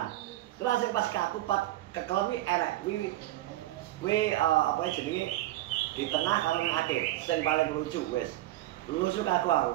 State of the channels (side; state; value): left; quieter; 15.8 dB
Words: Terus sing pas kaku kekelen iki enek kuwi apa jenenge di tengah karo ning akhir. Sing paling lucu wes. Lucu kaku